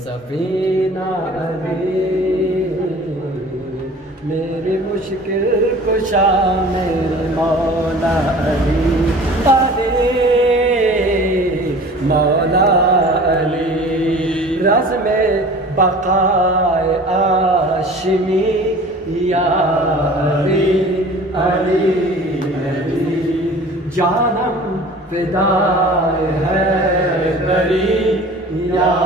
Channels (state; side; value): normal; both; correlation 0.44